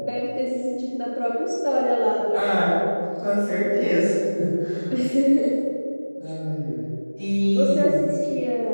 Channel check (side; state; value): both; inverted; correlation -1.00